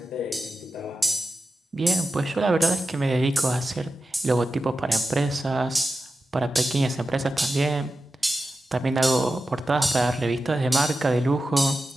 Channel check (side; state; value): both; normal; correlation 0.92